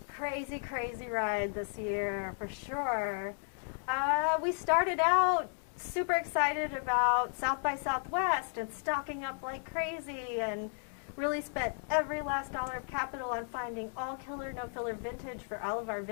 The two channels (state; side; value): silent; right; 55 dB below the other